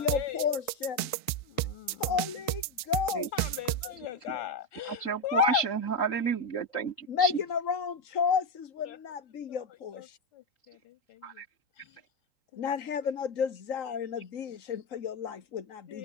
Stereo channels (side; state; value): right; late; 3.8 ms